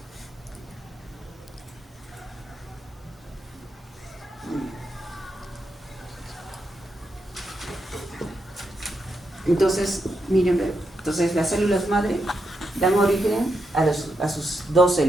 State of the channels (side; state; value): both; normal; correlation 0.84